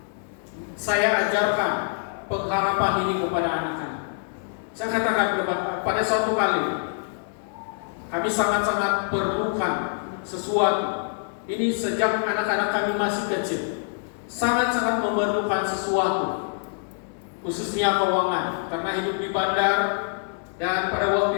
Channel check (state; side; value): silent; right; digital silence